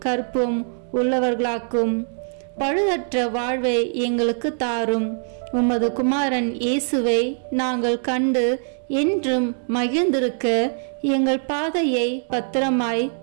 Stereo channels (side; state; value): left; silent; digital silence